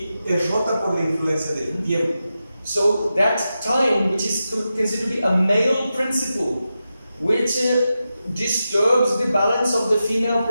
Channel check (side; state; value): both; inverted; correlation -0.90